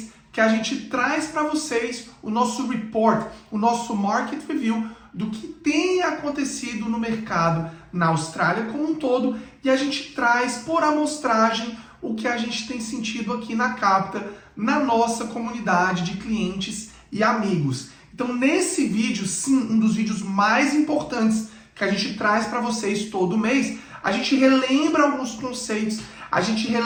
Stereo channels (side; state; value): both; identical; correlation 1.00